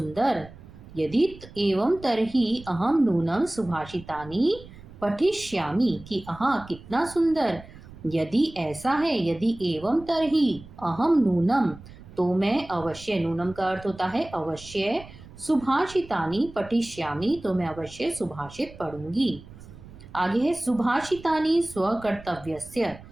यदि एवं तरही अहम नूनम सुभाषितानि पठिष्यामि। कि हाँ कितना सुंदर, यदि ऐसा है, यदि एवं तरही अहम नूनम, तो मैं अवश्य, नूनम का अर्थ होता है अवश्य, सुभाषितानि पठिष्यामि, तो मैं अवश्य सुभाषित पढ़ूंगी। आगे है सुभाषितानि स्वकर्तव्यस्य।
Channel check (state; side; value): noise; right; rumble, 18 dB below the sound